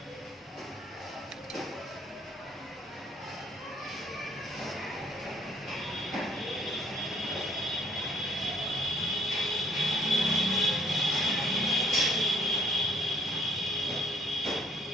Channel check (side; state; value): both; normal; correlation 0.62